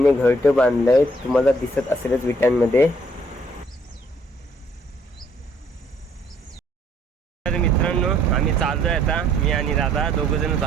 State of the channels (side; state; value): both; normal; correlation 0.64